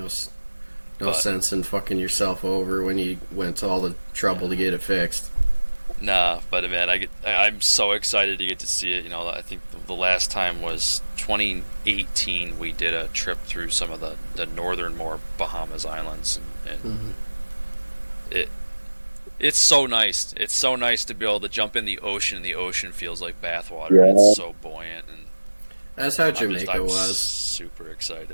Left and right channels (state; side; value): inverted; both; correlation -1.00